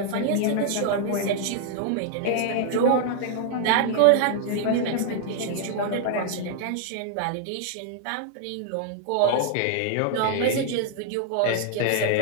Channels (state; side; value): different; both; correlation -0.01